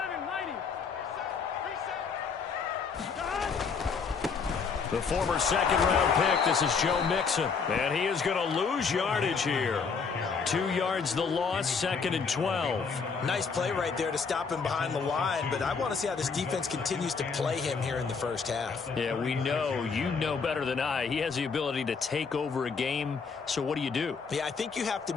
Mighty. The former second-round pick, this is Joe Mixon. And he is going to lose yardage here. 2 yards the loss, 2nd and 12. Nice play right there to stop him behind the line, but I want to see how this defense continues to play him here in the first half. Yeah, we know. You know better than I. He has the ability to take over a game, so what do you do? Yeah, I think you have to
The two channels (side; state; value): right; quieter; 5.5 dB